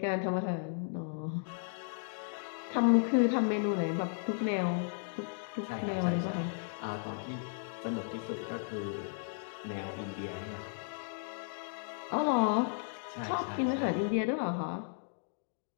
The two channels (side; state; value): right; silent; digital silence